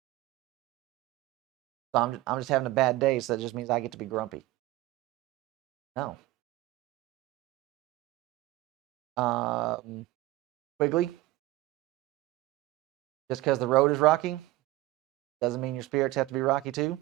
So I'm just having a bad day, so that just means I get to be grumpy. No. Quigley, just because the road is rocky doesn't mean your spirits have to be rocky too.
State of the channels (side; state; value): left; quieter; 17.9 dB